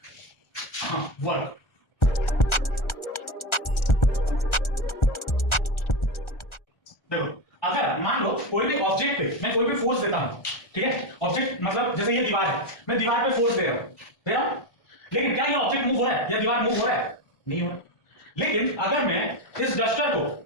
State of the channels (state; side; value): late; right; 1.4 ms